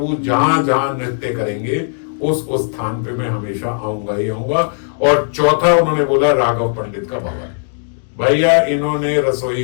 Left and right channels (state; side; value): silent; right; digital silence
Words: जहां जहां नृत्य करेंगे उस स्थान पे मैं हमेशा आऊंगा ही आऊंगा। और चौथा उन्होंने बोला राघव पंडित का भवन। भैया इन्होंने रसोई